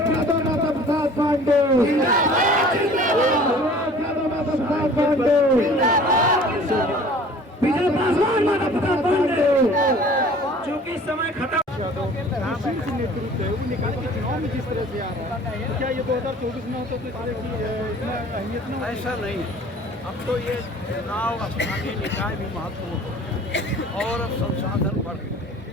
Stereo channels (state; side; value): normal; both; correlation 0.48